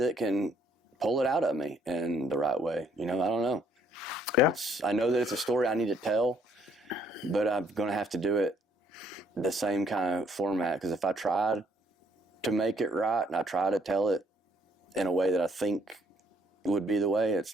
can pull it out of me in the right way. I don't know. Yeah. I know that it's a story I need to tell, but I'm going to have to do it the same kind of format, because if I try to make it right and I try to tell it in a way that I think would be the way, it's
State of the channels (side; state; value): both; normal; correlation 0.66